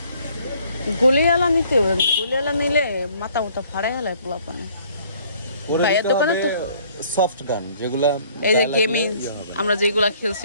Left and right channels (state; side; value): inverted; both; correlation -0.59